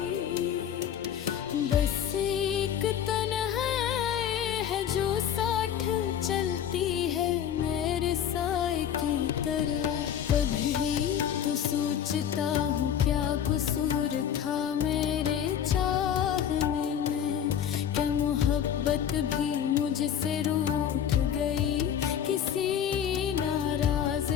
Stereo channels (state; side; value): quieter; right; 9.2 dB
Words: बस एक तन्हाई है जो साथ चलती है मेरे साए की तरह। कभी तो सोचता हूँ क्या कसूर था मेरे चाहने में, क्या मोहब्बत भी मुझसे रूठ गई किसी नाराज